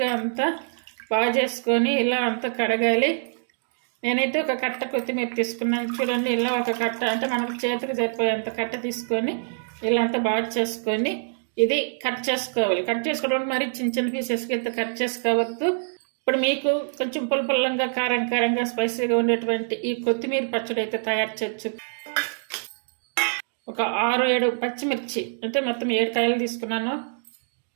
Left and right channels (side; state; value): left; silent; digital silence